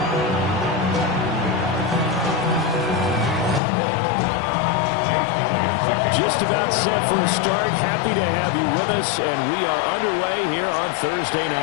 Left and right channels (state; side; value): drops out; right; at 3.6 s